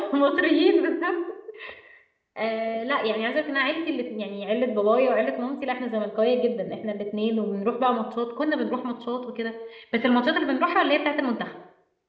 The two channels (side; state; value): both; identical; correlation 1.00